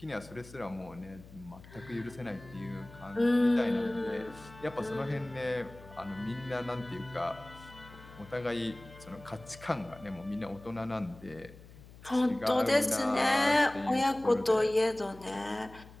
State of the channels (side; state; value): left; noise; hum, 19 dB below the sound